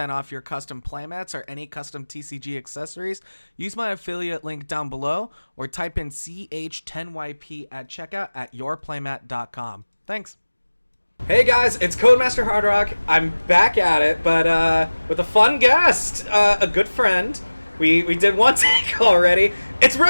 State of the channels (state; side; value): inverted; both; correlation -1.00